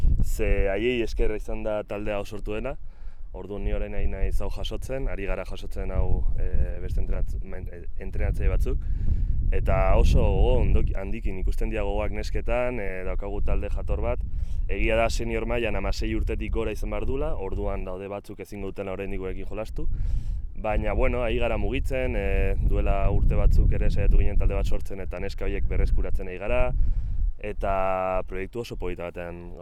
ze haiei eskerra izan da taldea sortu dena. Orduan ni orain naiz hau jasotzen, ari gara jasotzen hau beste entrenatzaile batzuk. Eta oso handikin ikusten dira gogoak nesketan, daukagu talde jator bat. Egia da senior mailan 16 urtetik gora izan behar dula, orduan daude batzuk ezingo dutela oraindik gurekin jolastu. Baina, ari gara mugitzen, duela urte batzuk ere saiatu ginen talde bat sortzen eta neska horiek berreskuratzen ari gara. Eta proiektu oso polita batean,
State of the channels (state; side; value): identical; both; correlation 1.00